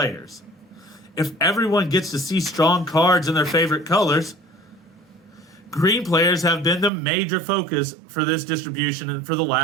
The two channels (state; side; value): drops out; left; at 6.9 s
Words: If everyone gets to see strong cards in their favorite colors, green players have been the major focus for this distribution for the